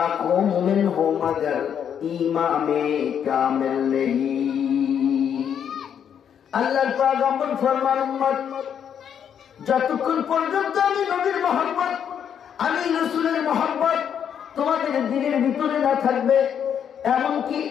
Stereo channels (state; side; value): quieter; right; 8.4 dB